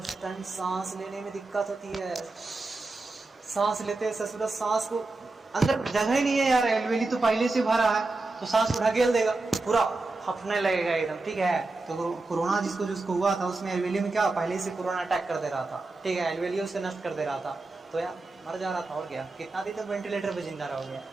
टाइम सांस लेने में दिक्कत होती है। सांस लेते ससुरा, सांस को अंदर जगह ही नहीं है यार, एल्वेली तो पहले से भरा है, तो सांस को ढकेल देगा, पूरा फफने लगेगा एकदम, ठीक है। तो कोरोना जिसको हुआ था, उसमें एल्वेली में क्या पहले से कोरोना अटैक कर दे रहा था, ठीक है, एल्वेली उसे नष्ट कर दे रहा था, तो यार मर जा रहा था। और क्या, कितना दिन तक वेंटिलेटर पे जिंदा रह गया,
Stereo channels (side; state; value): left; quieter; 3.3 dB